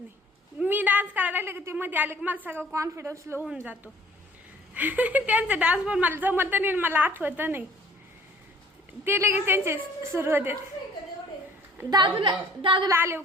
मी डान्स करायला लागले की ते मध्ये आले की मला सगळं कॉन्फिडन्स लो होऊन जातो. त्यांचा डान्स पण मला जमत नाही, मला आठवत नाही. ते लगेच त्यांचे सुरू होते. दादूला आले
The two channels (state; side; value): normal; both; correlation 0.53